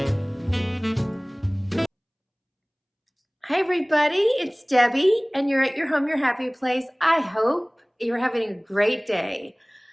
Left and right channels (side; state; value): both; identical; correlation 1.00